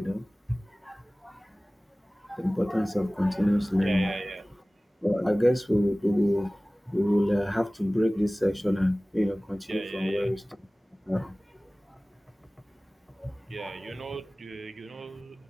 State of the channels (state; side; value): normal; both; correlation 0.98